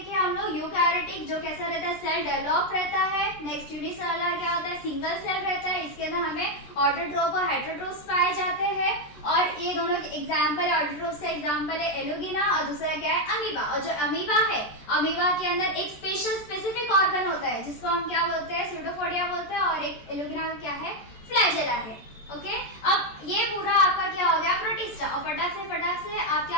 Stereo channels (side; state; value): right; late; 14 ms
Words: हम लोग यूकैरियोटिक जो कैसा रहता है, सेल डेवलप रहता है। नेक्स्ट यूनिसेलुलर क्या होता है, सिंगल सेल रहता है। इसके अंदर हमें ऑटोट्रोप और हेटरोट्रोप्स पाए जाते हैं। और ये दोनों के एग्जाम्पल, ऑटोट्रोप्स का एग्जाम्पल है एलोगिना और दूसरा क्या है अमीबा। और जो अमीबा है, अमीबा के अंदर एक स्पेसिफिक ऑर्गन होता है जिसको हम क्या बोलते हैं, स्यूडोपोडिया बोलते हैं। और एक एलोगिना का क्या है, फ्लैजेला है। ओके, अब ये पूरा आपका क्या हो गया, प्रोटिस्टा। और फटाक से आप